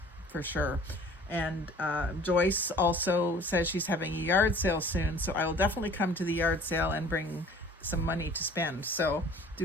for sure. And Joyce also says she's having a yard sale soon, so I will definitely come to the yard sale and bring some money to spend. So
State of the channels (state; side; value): normal; both; correlation 0.49